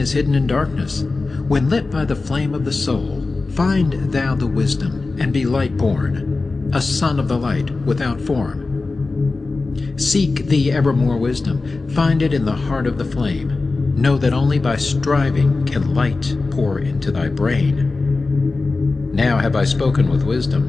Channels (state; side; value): quieter; right; 3.7 dB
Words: hidden in darkness. When lit by the flame of the soul, find thou the wisdom, and be light-born, a son of the light without form. Seek thee evermore wisdom, find it in the heart of the flame. Know that only by striving can light pour into thy brain. Now have I spoken with